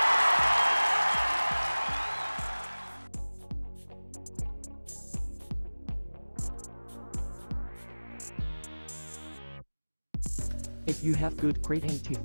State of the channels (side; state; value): both; inverted; correlation -1.00